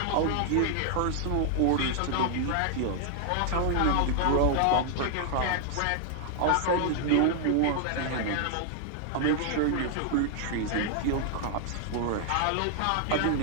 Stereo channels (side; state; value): both; different; correlation 0.00